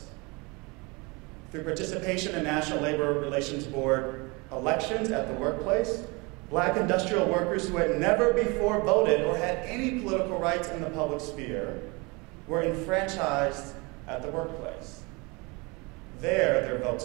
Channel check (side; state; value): left; quieter; 27.4 dB